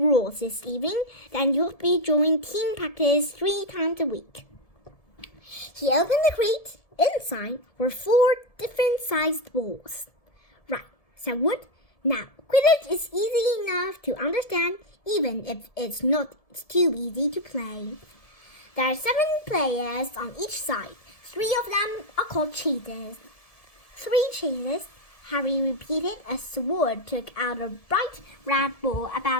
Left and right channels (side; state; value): right; late; 1.7 ms